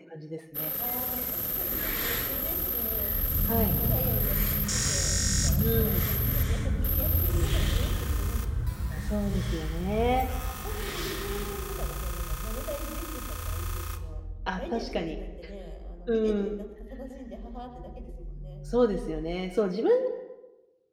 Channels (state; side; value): identical; both; correlation 1.00